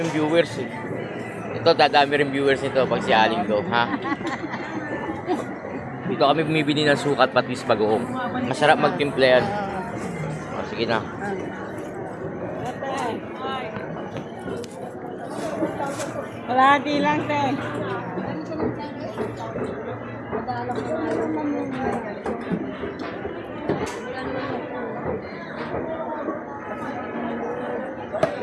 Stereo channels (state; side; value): identical; both; correlation 1.00